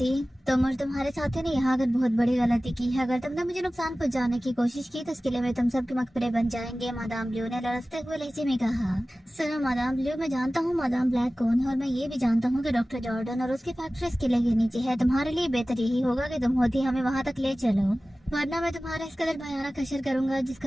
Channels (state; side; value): normal; both; correlation 0.97